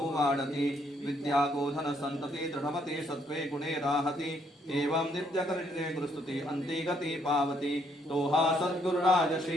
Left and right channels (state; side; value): normal; both; correlation 0.70